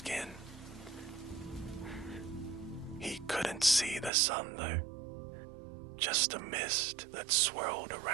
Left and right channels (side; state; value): left; drops out; at 4.1 s